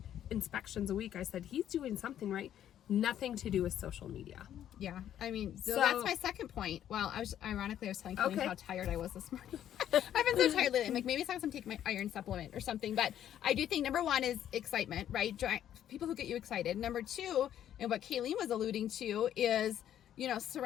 inspections a week. I said, he's doing something right. Nothing to do with social media. Yeah. I mean, so that's my second point. Well, I was telling Kalene how tired I was this morning. I've been so tired lately. I'm like, maybe it's time to take my iron supplement or something. But I do think number 1 is excitement, right? People who get you excited. Number 2, and what Kalene was alluding to, is, you know,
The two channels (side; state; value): right; quieter; 10.8 dB